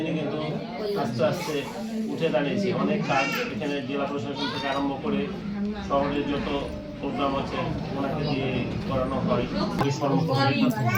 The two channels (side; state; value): both; identical; correlation 1.00